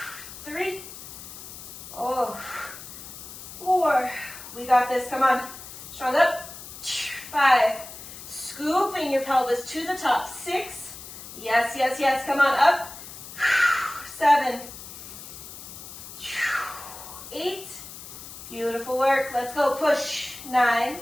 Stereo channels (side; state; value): left; noise; hiss, 13 dB below the sound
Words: 3. Oh. 4. We got this. Come on. Strong up. 5. Scooping your pelvis to the top. 6. Yes, yes, yes. Come on. Up. 7. 8. Beautiful work. Let's go. Push. 9.